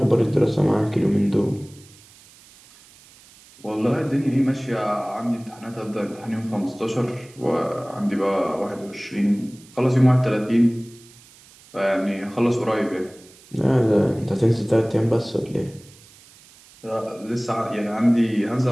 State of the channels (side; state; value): right; noise; hiss, 25 dB below the sound